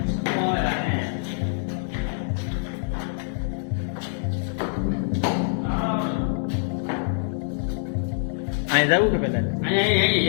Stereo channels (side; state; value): right; silent; digital silence